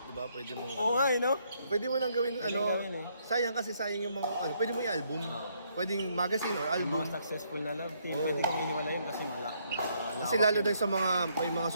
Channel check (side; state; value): both; inverted; correlation -0.71